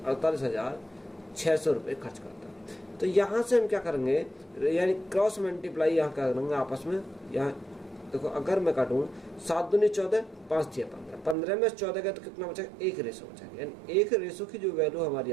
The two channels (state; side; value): drops out; left; at 11.4 s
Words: 48,600 रुपये खर्च करता है। तो यहाँ से हम क्या करेंगे, यानी क्रॉस मल्टीप्लाई यहाँ क्या करेंगे आपस में। यहाँ देखो अगर मैं काटूँ 7 दूनी 14, 5 दिया 15, 15 में 14 गया तो कितना बचेगा, 1 रेशो बचेगा, यानी 1 रेशो की जो वैल्यू हमारी